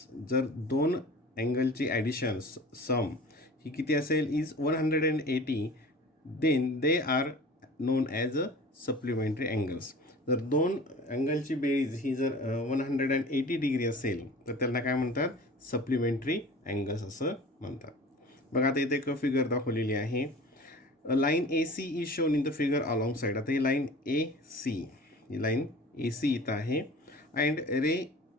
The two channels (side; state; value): both; normal; correlation 0.41